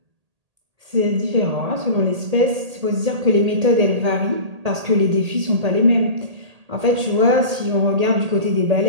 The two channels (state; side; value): late; left; 1.8 ms